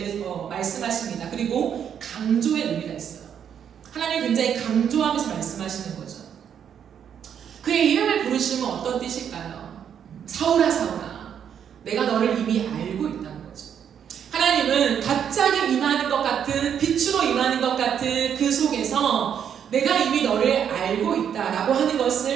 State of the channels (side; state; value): left; quieter; 8.5 dB